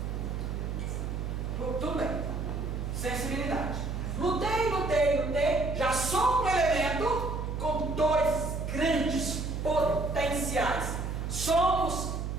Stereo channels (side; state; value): right; noise; hum, 3 dB below the sound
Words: Tudo bem. Sensibilidade. Lutei. Já sou um elemento com dois grandes potenciais. Somos